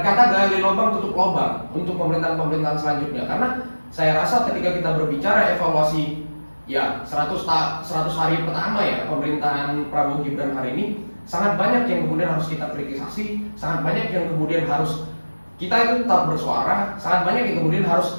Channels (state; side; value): inverted; both; correlation -1.00